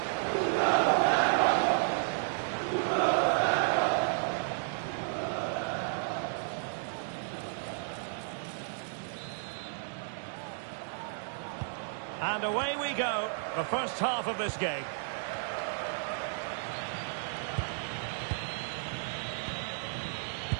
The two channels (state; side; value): silent; left; digital silence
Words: And away we go, the first half of this game.